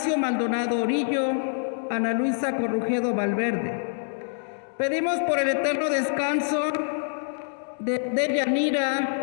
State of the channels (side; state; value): right; silent; digital silence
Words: Maldonado Orillo, Ana Luisa Corrujedo Valverde. Pedimos por el eterno descanso de